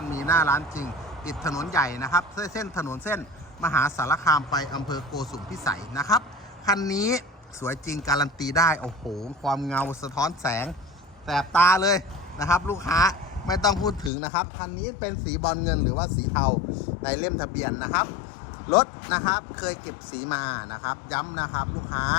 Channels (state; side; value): drops out; right; at 14.1 s